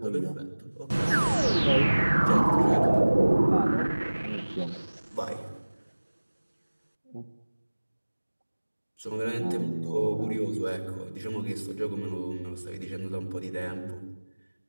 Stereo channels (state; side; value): inverted; both; correlation -1.00